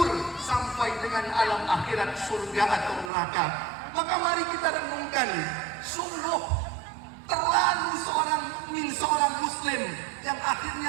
sampai dengan alam akhirat, surga atau neraka. Maka mari kita renungkan, sungguh terlalu seorang mukmin, seorang muslim yang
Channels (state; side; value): drops out; left; at 3.1 s